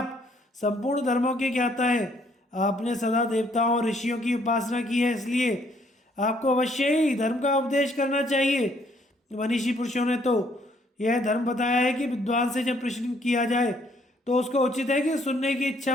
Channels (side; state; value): both; normal; correlation 0.66